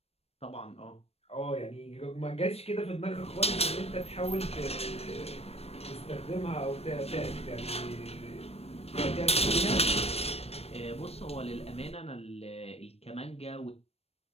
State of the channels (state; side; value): late; right; 0.29 ms